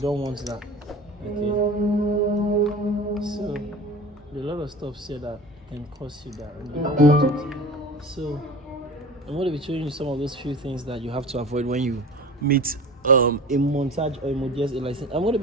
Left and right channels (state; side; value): normal; both; correlation 0.37